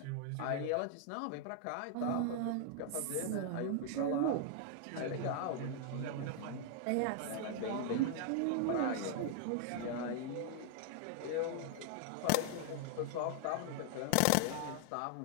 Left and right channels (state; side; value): different; both; correlation 0.00